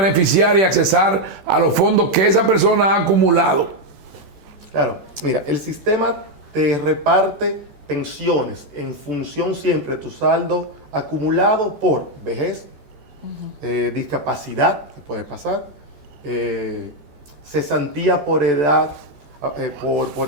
y accesar a los fondos que esa persona ha acumulado? Claro, mira, el sistema te reparte pensiones en función siempre de tu saldo acumulado por vejez, discapacidad, que puede pasar, cesantía por edad, por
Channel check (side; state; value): left; late; 14 ms